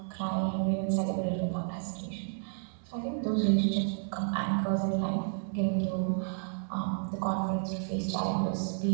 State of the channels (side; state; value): left; silent; 57 dB below the other